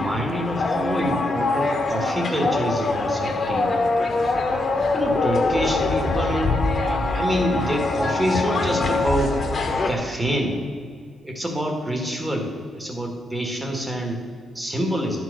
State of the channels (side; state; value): both; normal; correlation 0.81